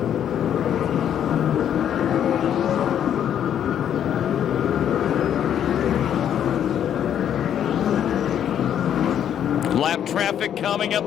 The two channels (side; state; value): right; quieter; 9.7 dB